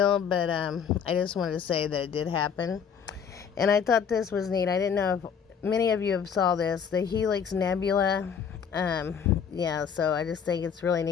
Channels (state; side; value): quieter; right; 7.1 dB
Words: but I just wanted to say that it did happen. And I thought this was neat. I didn't know if many of you have saw this, the Helix Nebula. Yeah, so I just think it's really